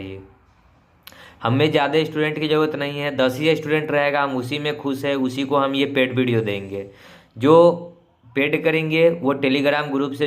हमें ज़्यादा स्टूडेंट की ज़रूरत नहीं है, 10 ही स्टूडेंट रहेगा, हम उसी में खुश है, उसी को हम ये पेड वीडियो देंगे। जो पेड करेंगे वो टेलीग्राम ग्रुप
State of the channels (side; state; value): both; identical; correlation 1.00